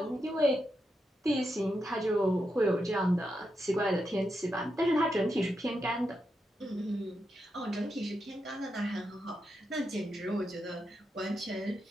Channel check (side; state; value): both; normal; correlation 0.85